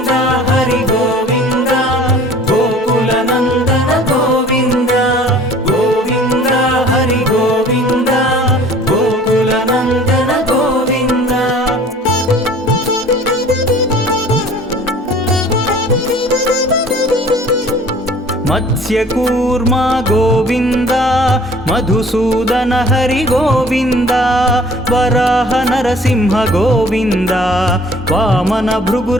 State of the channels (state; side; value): normal; both; correlation 0.50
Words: హరి గోవింద, గోకుల నందన గోవింద. గోవింద హరి గోవింద, గోకుల నందన గోవింద. మత్స్యకూర్మ గోవింద, మధుసూదన హరి గోవింద, వరాహ నరసింహ గోవింద, వామన